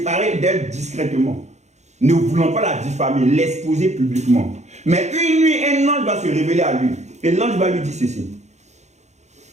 d'elle discrètement, ne voulant pas la diffamer, l'exposer publiquement. Mais une nuit, un ange va se révéler à lui, et l'ange va lui dire ceci.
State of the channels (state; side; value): late; left; 0.33 ms